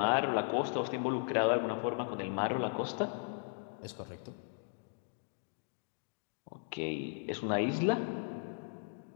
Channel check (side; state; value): right; silent; 53 dB below the other